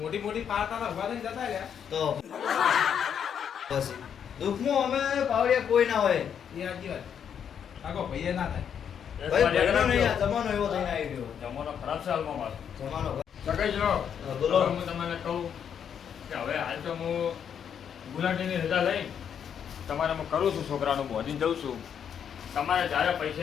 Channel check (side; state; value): right; quieter; 8.1 dB